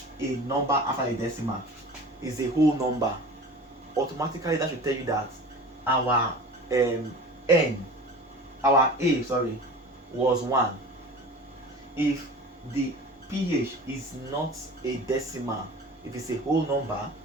a number after a decimal, is a whole number, automatically that should tell you that our A was 1. If the pH is not a decimal, if it's a whole number,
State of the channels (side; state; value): both; normal; correlation 0.38